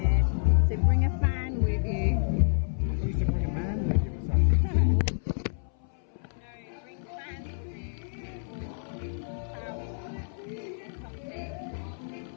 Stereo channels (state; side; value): silent; right; 59 dB below the other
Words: so bring a fan with you. I used to bring a man with you or something. No, bring fans with you.